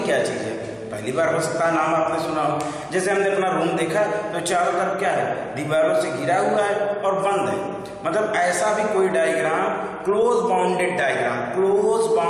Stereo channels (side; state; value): both; identical; correlation 1.00